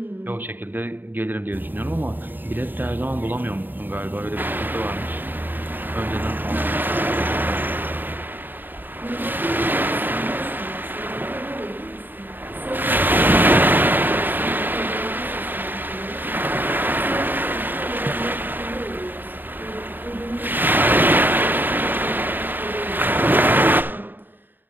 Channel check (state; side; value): late; left; 0.091 ms